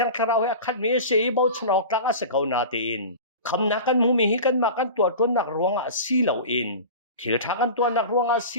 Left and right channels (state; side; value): inverted; both; correlation -0.33